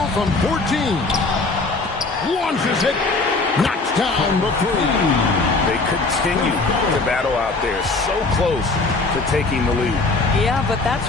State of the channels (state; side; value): quieter; right; 3.6 dB